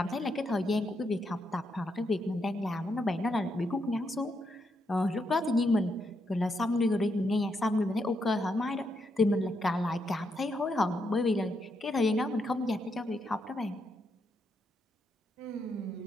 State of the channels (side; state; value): both; normal; correlation 0.80